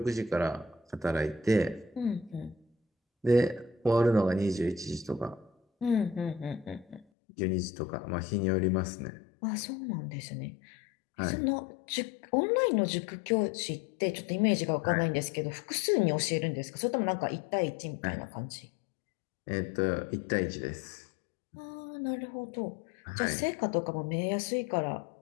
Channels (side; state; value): right; drops out; at 7.1 s